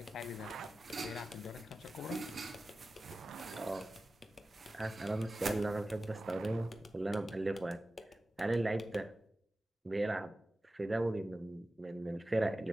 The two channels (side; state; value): both; normal; correlation 0.95